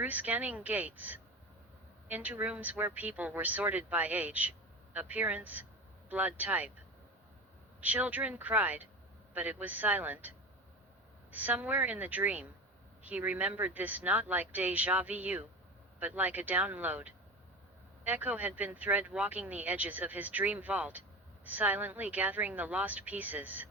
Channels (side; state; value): both; normal; correlation 0.28